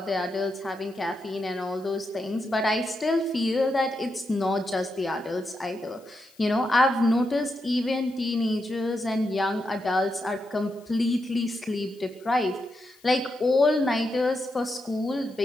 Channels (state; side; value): noise; left; hiss, 29 dB below the sound